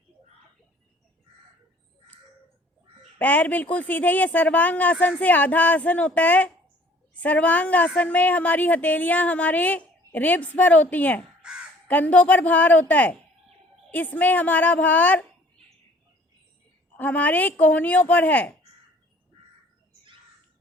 पैर बिल्कुल सीधे। ये सर्वांग आसन से आधा आसन होता है। सर्वांग आसन में हमारी हथेलियां हमारे रिब्स पर होती हैं, कंधों पर भार होता है। इसमें हमारा भार हमारे कोहनियों पर है।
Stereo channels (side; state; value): both; normal; correlation 0.55